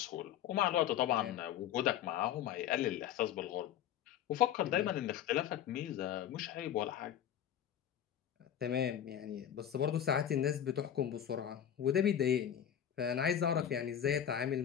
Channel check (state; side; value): quieter; right; 10.0 dB